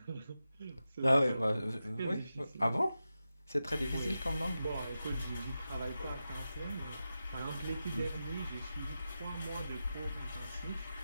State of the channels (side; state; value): both; inverted; correlation -0.91